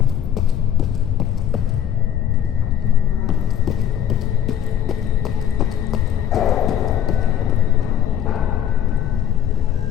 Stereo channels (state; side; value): quieter; right; 9.8 dB